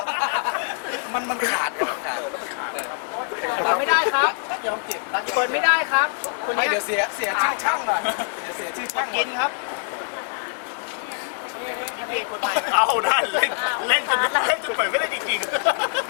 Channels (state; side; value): silent; right; digital silence